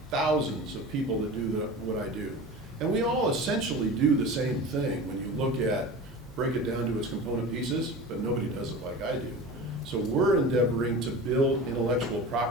thousands of people that do what I do. And we all essentially do the same thing when you break it down to its component pieces, but nobody does it like I do. So we're endeavoring to build intellectual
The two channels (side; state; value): both; normal; correlation 0.33